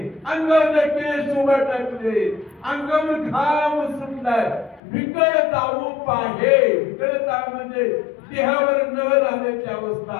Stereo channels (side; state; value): right; drops out; at 4.8 s